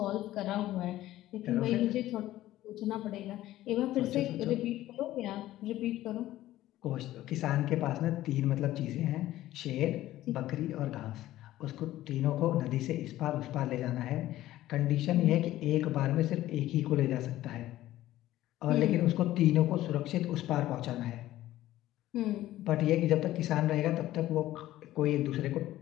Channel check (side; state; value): right; quieter; 14.8 dB